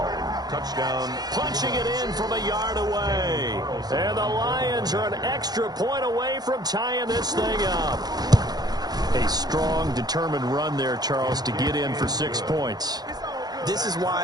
Touchdown. Punching it in from a yard away. And the Lions are an extra point away from tying this thing up. A strong, determined run there, Charles, to get in for 6 points. This is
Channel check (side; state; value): left; late; 0.19 ms